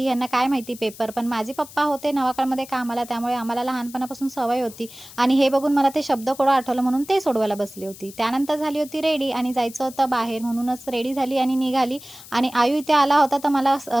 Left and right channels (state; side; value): noise; left; hiss, 18 dB below the sound